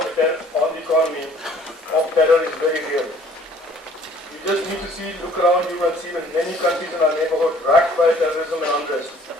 the economy of terror is very real. You just need to look around you and see that many countries in our neighborhood racked by terrorism and unrest,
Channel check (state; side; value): normal; both; correlation 0.55